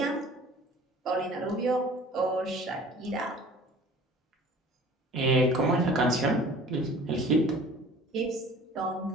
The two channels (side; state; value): both; normal; correlation 0.47